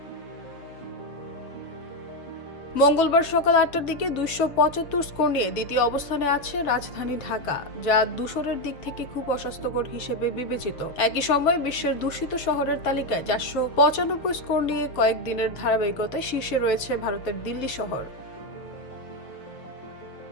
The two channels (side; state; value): right; late; 6.9 ms